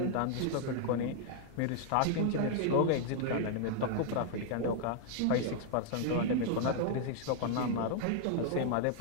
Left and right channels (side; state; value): both; different; correlation 0.00